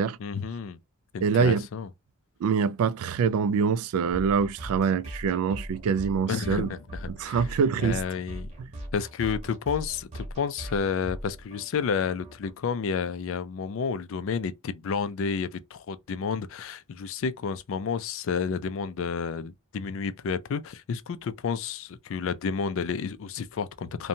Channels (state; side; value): normal; both; correlation 0.13